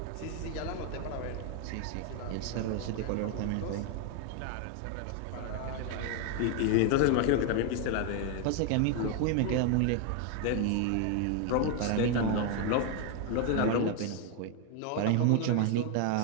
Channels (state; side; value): different; both; correlation 0.01